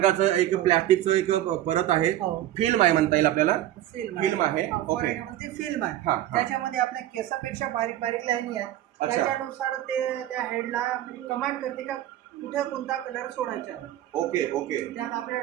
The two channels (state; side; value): quieter; left; 13.2 dB